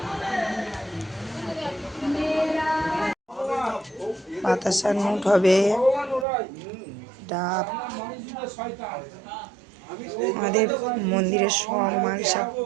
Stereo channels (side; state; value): left; drops out; at 6.2 s